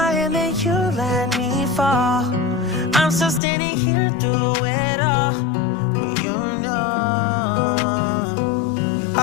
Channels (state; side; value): drops out; right; at 3.4 s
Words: hand and you let me fall. I'm still standing here through it all, but you know